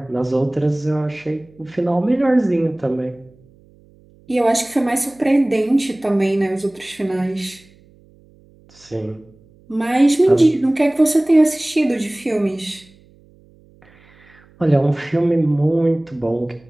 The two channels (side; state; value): right; noise; hum, 29 dB below the sound